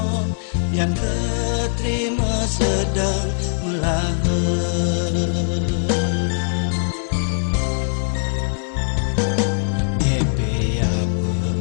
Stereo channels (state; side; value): silent; right; digital silence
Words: yang keterima sedang melahir